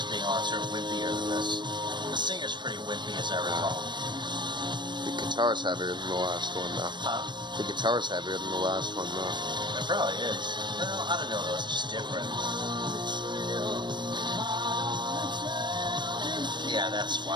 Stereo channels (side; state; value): left; late; 0.22 ms